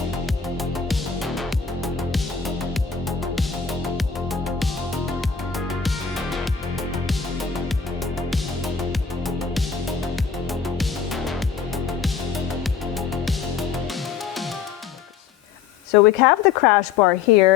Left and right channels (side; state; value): right; quieter; 6.4 dB